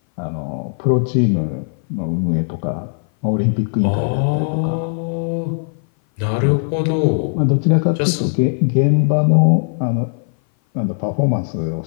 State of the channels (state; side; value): silent; right; 57 dB below the other